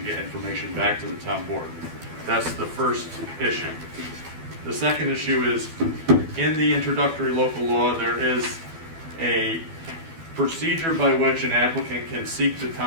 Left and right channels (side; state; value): left; late; 12 ms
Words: get information back to the town board. That's the first issue. The second issue is, in the introductory local law, there is a procedure by which an applicant can seek the